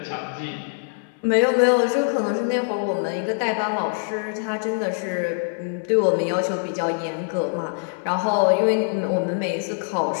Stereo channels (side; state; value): right; silent; 63 dB below the other